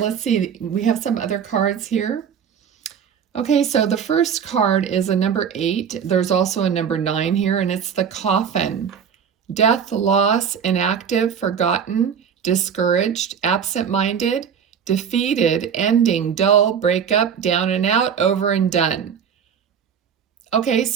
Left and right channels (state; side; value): quieter; left; 7.5 dB